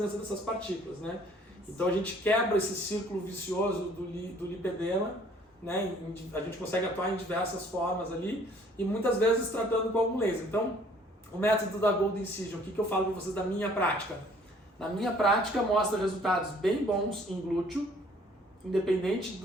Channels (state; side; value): normal; both; correlation 0.58